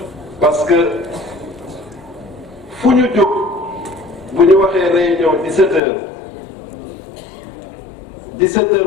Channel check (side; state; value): right; drops out; at 5.8 s